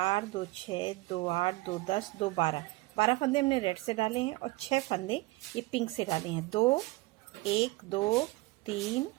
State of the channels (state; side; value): quieter; left; 21.8 dB